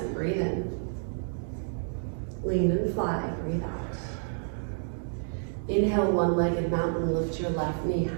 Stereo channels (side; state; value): left; silent; digital silence